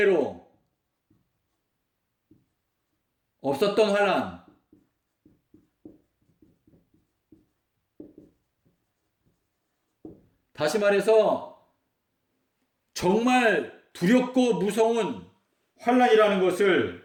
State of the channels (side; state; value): both; identical; correlation 1.00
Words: 없었던 환란 다시 말해서 정말 두렵고 무서운 환란이라는